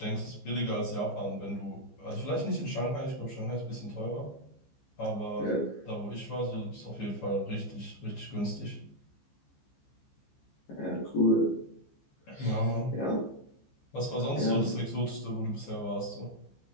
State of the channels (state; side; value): late; right; 15 ms